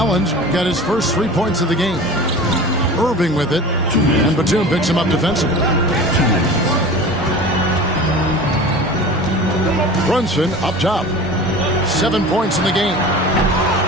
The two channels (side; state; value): both; normal; correlation 0.37